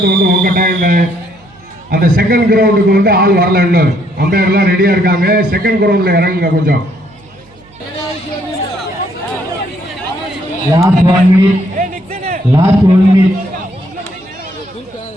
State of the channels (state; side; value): noise; right; hum, 29 dB below the sound